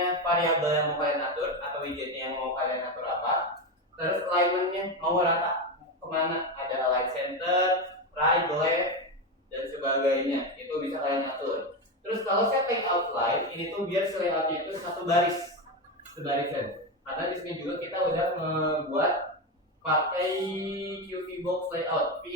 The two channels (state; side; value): normal; both; correlation 0.14